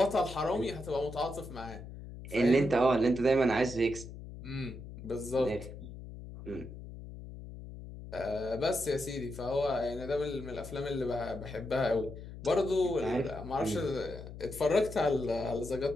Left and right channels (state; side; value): noise; left; hum, 12 dB below the sound